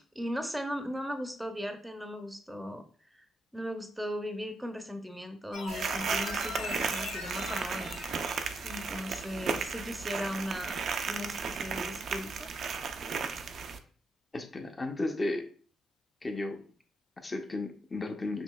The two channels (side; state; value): both; normal; correlation 0.81